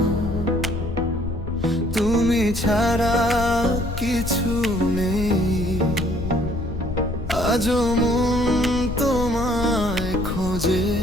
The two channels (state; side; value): noise; left; rumble, 7 dB below the sound